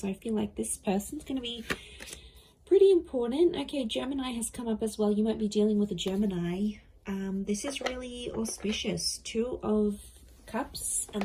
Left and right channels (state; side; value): identical; both; correlation 1.00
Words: I feel like this person's going to be pretty important. Okay, Gemini has come up as well. You might be dealing with a Gemini. This is really auspicious. Two of Cups and